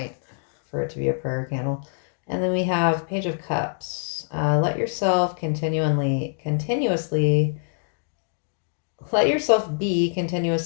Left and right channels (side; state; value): right; silent; digital silence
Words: for it to be a prayer candle. And then we have Page of Cups. Let yourself be